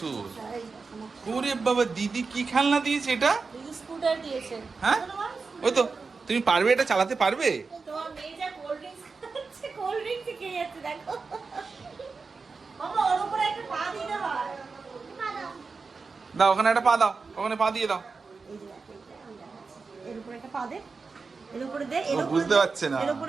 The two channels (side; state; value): left; quieter; 4.5 dB